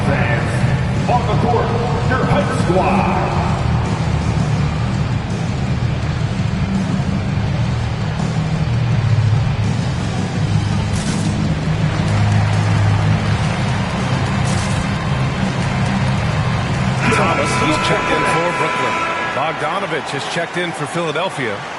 On the court, your Hype Squad. Thomas, he's checked in for Brooklyn. Bogdanovich has checked in for Philadelphia.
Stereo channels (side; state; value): both; identical; correlation 1.00